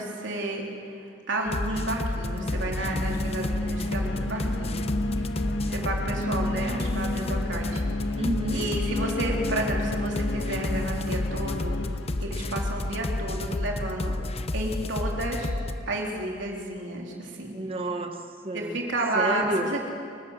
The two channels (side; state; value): both; normal; correlation 0.57